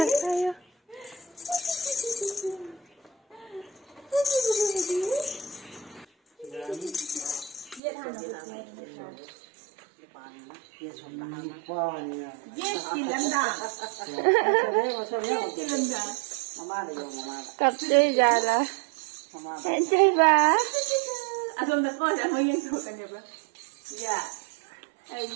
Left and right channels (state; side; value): drops out; left; at 7.8 s